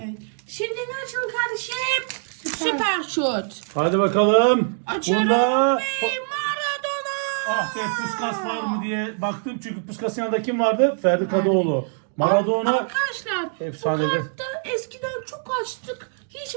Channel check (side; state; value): left; silent; digital silence